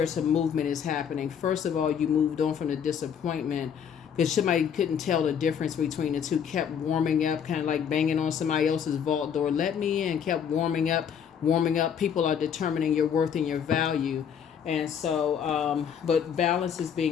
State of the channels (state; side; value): quieter; right; 7.9 dB